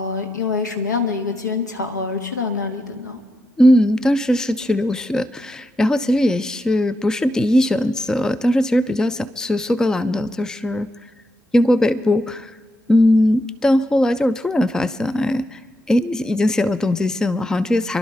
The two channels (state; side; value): normal; both; correlation 0.84